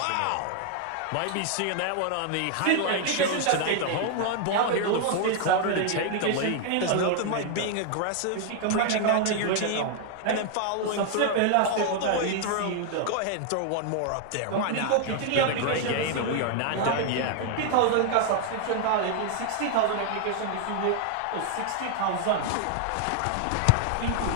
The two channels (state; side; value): different; both; correlation 0.00